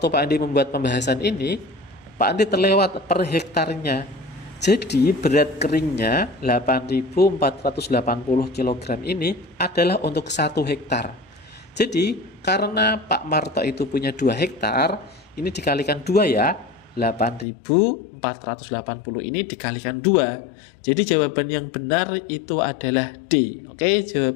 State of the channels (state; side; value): drops out; right; at 17.4 s